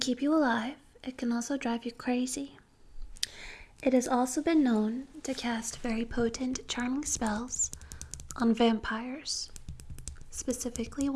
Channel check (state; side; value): identical; both; correlation 1.00